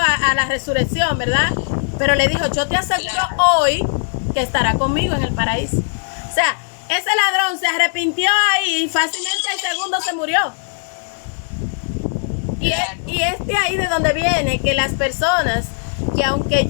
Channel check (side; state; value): right; silent; digital silence